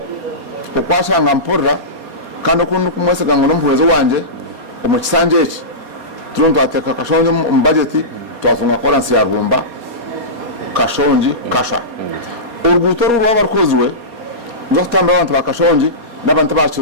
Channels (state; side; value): late; left; 4.2 ms